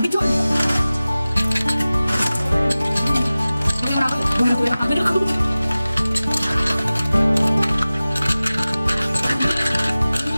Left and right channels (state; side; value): inverted; both; correlation -0.97